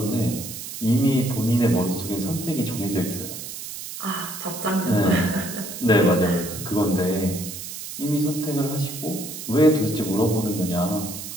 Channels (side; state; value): right; noise; hiss, 9 dB below the sound